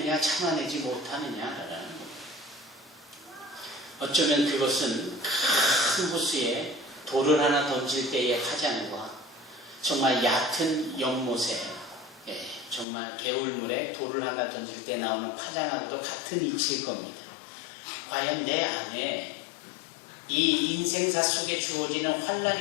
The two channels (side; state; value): right; drops out; at 12.9 s